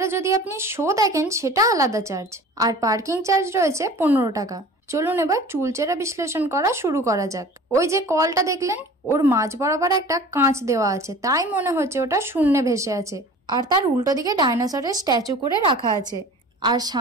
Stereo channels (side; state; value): both; normal; correlation 0.43